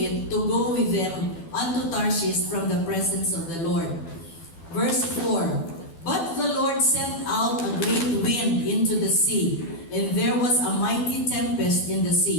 to go with them unto Tarshish from the presence of the Lord. Verse 4. But the Lord sent out a great wind into the sea, and there was a mighty tempest in the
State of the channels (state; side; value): late; right; 12 ms